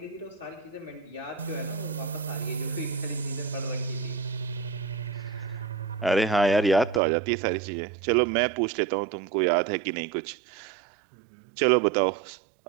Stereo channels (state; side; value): drops out; left; at 7.0 s